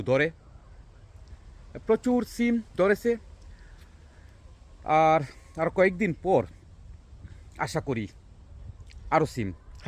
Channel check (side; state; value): both; identical; correlation 1.00